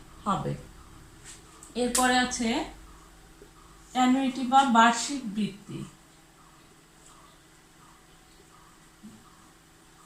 হবে। এরপরে আছে অ্যানুইটি বা বার্ষিক বৃত্তি।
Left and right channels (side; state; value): both; identical; correlation 1.00